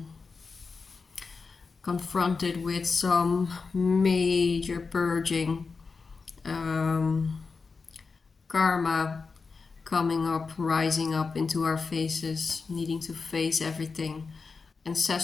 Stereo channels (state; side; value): quieter; right; 4.6 dB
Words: confronted with some major purging, um, karma coming up, rising up into our faces, needing to face everything.